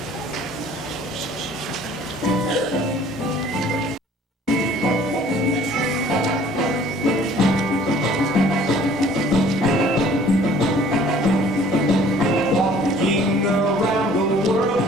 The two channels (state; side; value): normal; both; correlation 0.54